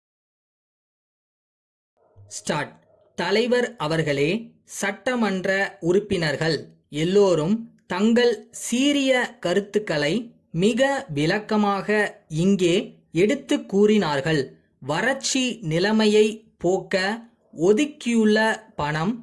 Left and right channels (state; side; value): identical; both; correlation 1.00